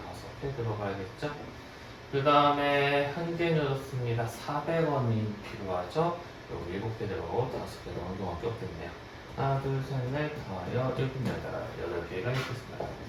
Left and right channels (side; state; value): both; identical; correlation 1.00